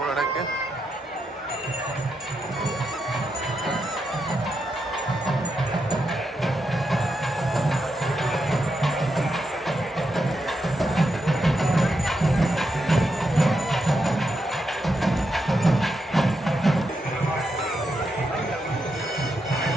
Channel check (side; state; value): both; normal; correlation 0.84